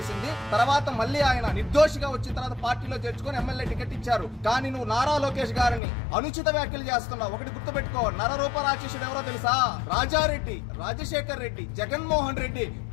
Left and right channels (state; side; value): drops out; right; at 5.8 s